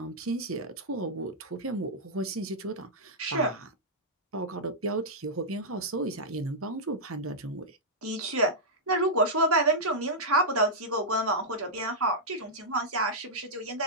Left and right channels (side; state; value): both; normal; correlation -0.09